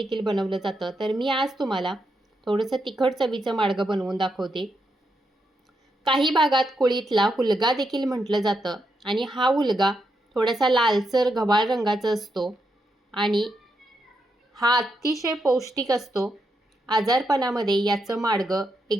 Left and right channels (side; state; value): both; normal; correlation 0.82